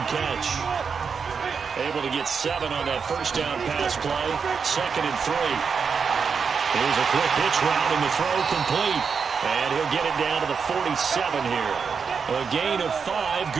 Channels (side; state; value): left; quieter; 5.9 dB